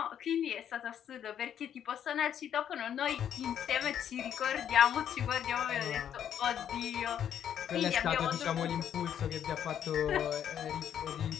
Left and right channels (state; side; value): quieter; right; 9.4 dB